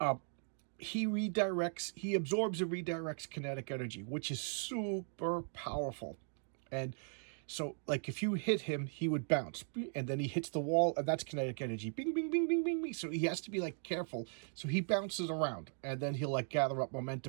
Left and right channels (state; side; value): silent; left; 52 dB below the other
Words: He absorbs and redirects kinetic energy, which is super powerful. And so, like, if you hit him, he would bounce, and then he hits the wall, and that's kinetic energy. Bing, bing, bing, bing, bing, bing. So he has to be, like, careful. So he bounces around, and then he'll, like, gather up